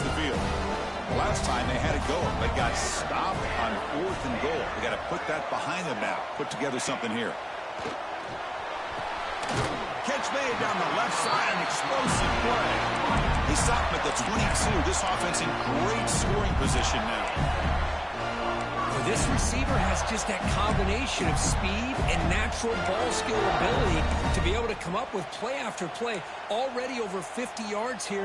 field. The last time they had it go, they got stopped on fourth and goal. They got to put that behind them now. Put together something here. Catch made down the left side, an explosive play. They stop him at the 22. This offense in great scoring position now. Well, this receiver has just that combination of speed and natural ball skill ability to be able to come up with play after play. Already over 50 yards here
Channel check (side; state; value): both; identical; correlation 1.00